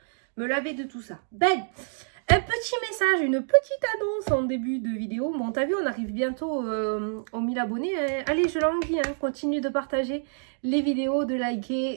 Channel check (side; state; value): left; silent; digital silence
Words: laver de tout ça. Ben, un petit message, une petite annonce en début de vidéo. Bon, t'as vu, on arrive bientôt aux 1000 abonnés. Hein. Allez, je l'envie, hein. Continue de partager les vidéos, de